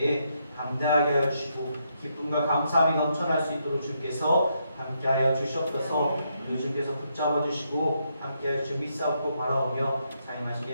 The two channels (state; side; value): inverted; both; correlation -0.78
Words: 담대하게 하여 주시고 기쁨과 감사함이 넘쳐날 수 있도록 주께서 함께하여 주시옵소서. 우리 주께서 붙잡아 주시고 함께하여 주 믿사옵고 바라오며 사용하신